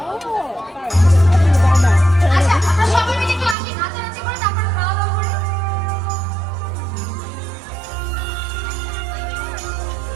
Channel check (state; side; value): drops out; left; at 3.6 s